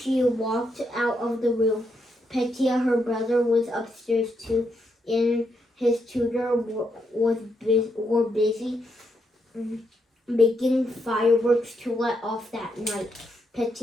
walked out of the room. Petya, her brother, was upstairs too, and his tutor were busy making fireworks to let off that night.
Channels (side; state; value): both; normal; correlation 0.79